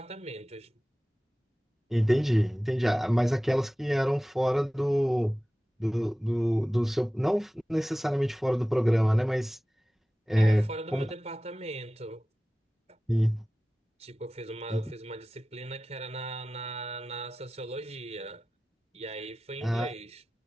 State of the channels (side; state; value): both; normal; correlation 0.96